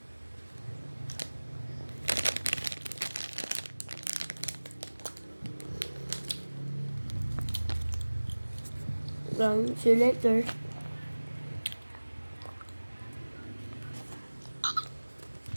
See you later.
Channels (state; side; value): inverted; both; correlation -1.00